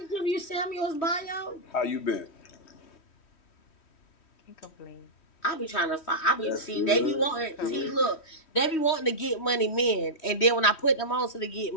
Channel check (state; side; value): late; right; 3.1 ms